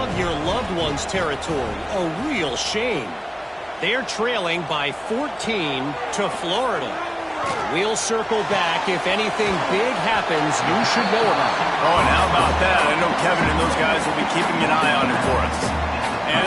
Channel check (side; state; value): both; identical; correlation 1.00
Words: your loved ones territory. A real shame. They're trailing by 14 to Florida. We'll circle back if anything big happens you should know about. Oh, and how about that? I know Kevin and those guys will be keeping an eye on it for us.